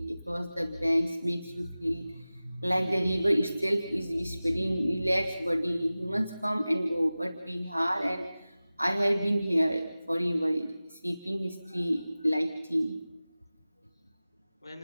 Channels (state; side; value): inverted; both; correlation -0.97